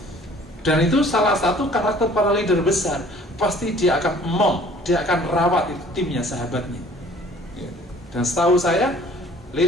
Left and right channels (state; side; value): normal; both; correlation 0.53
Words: Dan itu salah satu karakter para leader besar. Pasti dia akan dia akan rawat itu timnya, sahabatnya. Dan setahu saya,